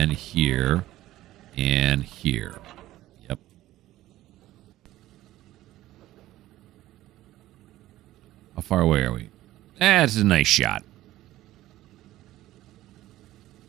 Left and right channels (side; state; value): left; quieter; 15.3 dB